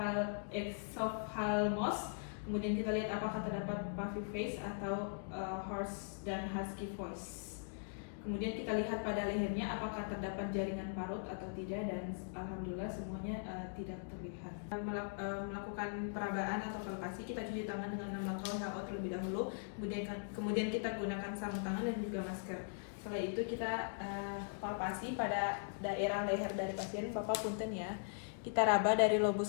Kemudian kita lihat apakah terdapat puffy face atau hoarse dan husky voice. Kemudian kita lihat pada lehernya apakah terdapat jaringan parut atau tidak, dan alhamdulillah semuanya tidak terlihat. Melakukan perabaan atau palpasi, kita cuci tangan dengan 6 langkah WHO terlebih dahulu. Kemudian kita gunakan sarung tangan dan juga masker. Setelah itu kita palpasi pada daerah leher dari pasien. Bapak punten ya. Kita raba dari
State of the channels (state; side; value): silent; right; digital silence